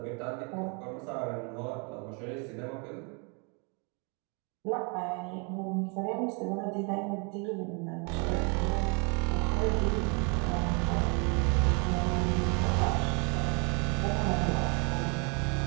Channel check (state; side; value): quieter; left; 34.7 dB